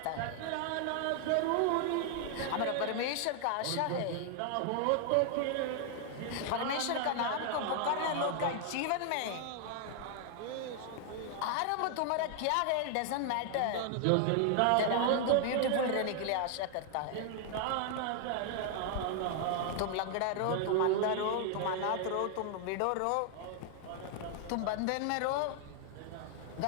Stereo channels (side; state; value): both; different; correlation 0.00